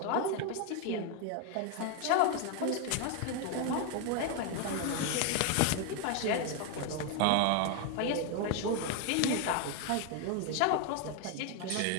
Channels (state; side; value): different; both; correlation 0.01